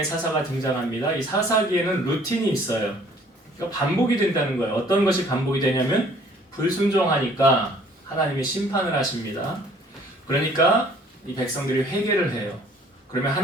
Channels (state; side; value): normal; both; correlation 0.57